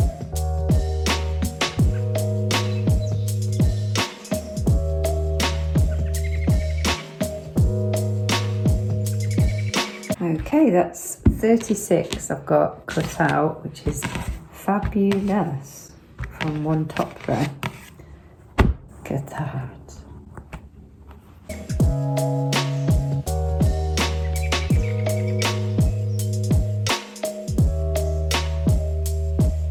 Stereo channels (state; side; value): identical; both; correlation 1.00